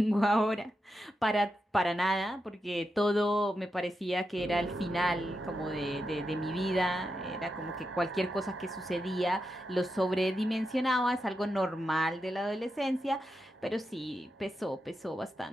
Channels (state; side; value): normal; both; correlation 0.87